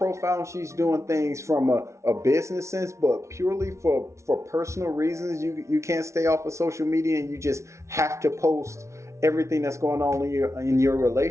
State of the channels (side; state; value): left; late; 0.14 ms